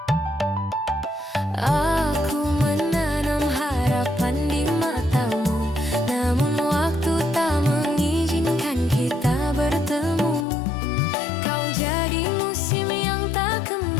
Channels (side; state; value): right; drops out; at 10.5 s